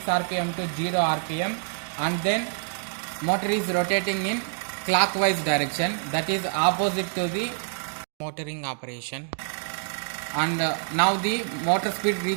rpm to 0 rpm, and then motor is rotating in clockwise direction, that is opposite to the motoring operation, and now the motor speed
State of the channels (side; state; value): left; silent; digital silence